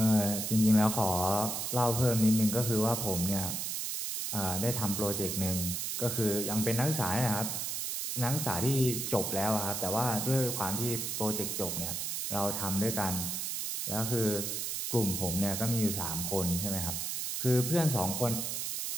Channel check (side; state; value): right; noise; hiss, 2 dB below the sound